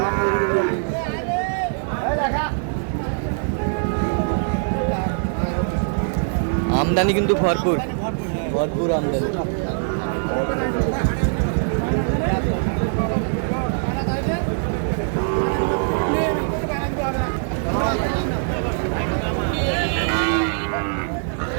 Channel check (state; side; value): silent; left; 64 dB below the other